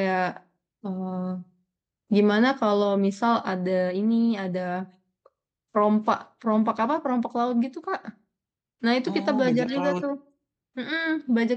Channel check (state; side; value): identical; both; correlation 1.00